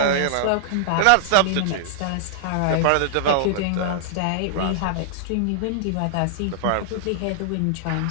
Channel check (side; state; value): both; different; correlation -0.01